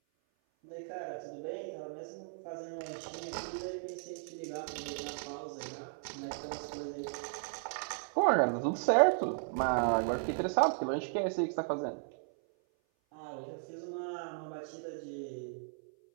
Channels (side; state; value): left; silent; 54 dB below the other